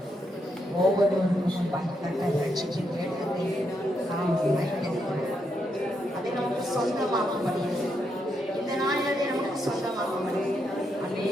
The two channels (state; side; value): normal; both; correlation 0.80